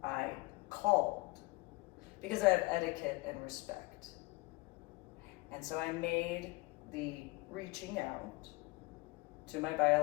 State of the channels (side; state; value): right; quieter; 23.4 dB